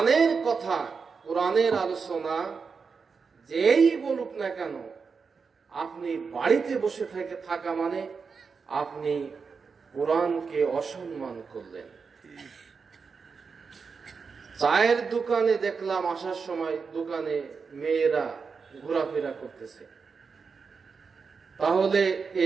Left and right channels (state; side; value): quieter; left; 5.3 dB